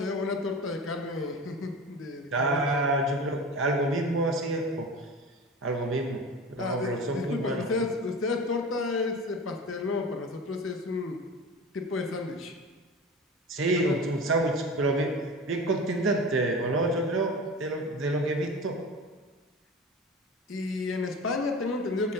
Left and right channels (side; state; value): both; normal; correlation 0.33